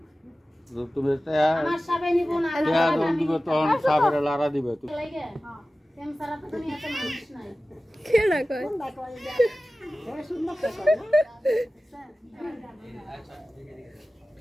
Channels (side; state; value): both; normal; correlation 0.96